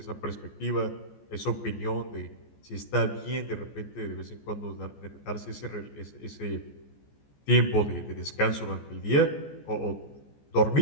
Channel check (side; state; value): right; late; 14 ms